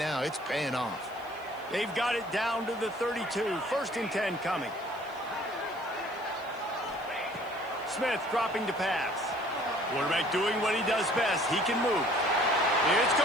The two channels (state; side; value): noise; left; hiss, 26 dB below the sound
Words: it's paying off. They've got it down to the 32. 1st and 10 coming. Smith dropping to pass. Quarterback doing what he does best. He can move. It's